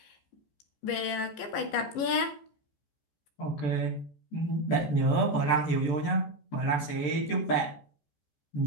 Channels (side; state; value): right; late; 15 ms